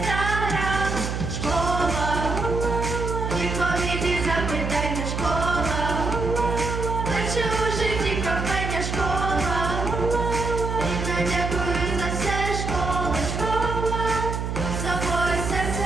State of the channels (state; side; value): noise; right; hum, 3 dB below the sound